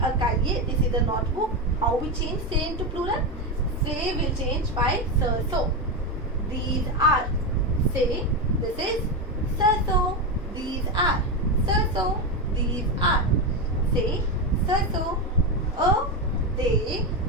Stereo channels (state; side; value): normal; both; correlation 0.12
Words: cahier, this is a notebook. How we change say into plural? Say will change by so. These are. Say this is so. These are. So. These are. Say so. A they